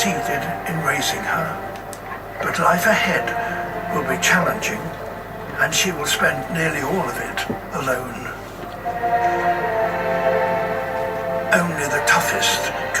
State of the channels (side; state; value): both; identical; correlation 1.00